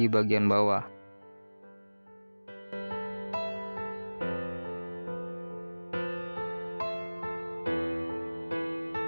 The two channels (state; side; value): inverted; both; correlation -1.00